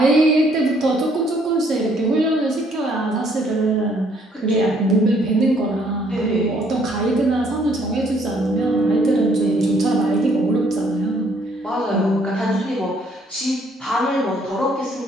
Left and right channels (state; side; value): normal; both; correlation 0.65